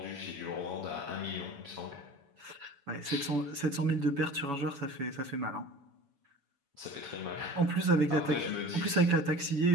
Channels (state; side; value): late; left; 7.1 ms